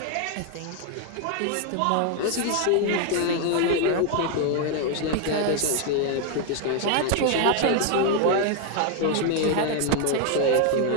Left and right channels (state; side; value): different; both; correlation 0.00